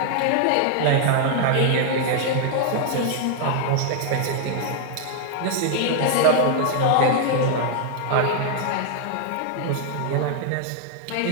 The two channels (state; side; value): different; both; correlation 0.00